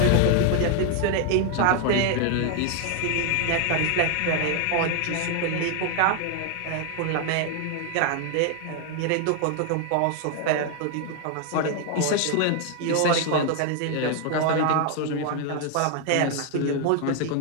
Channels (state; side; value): different; both; correlation 0.00